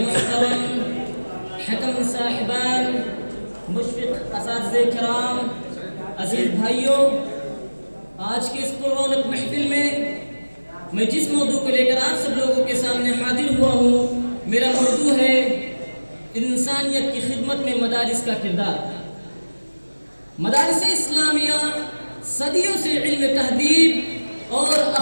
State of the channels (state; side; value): inverted; both; correlation -1.00